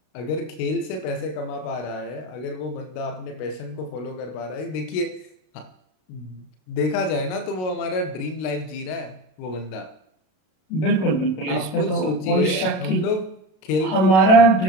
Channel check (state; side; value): late; right; 32 ms